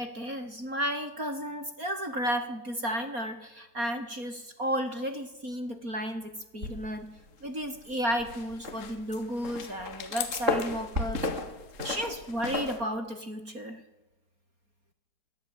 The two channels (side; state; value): left; late; 4.3 ms